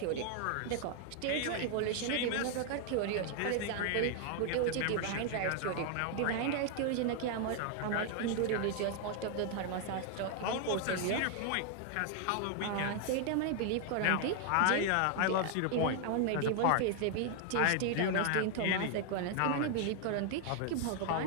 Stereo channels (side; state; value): both; different; correlation 0.00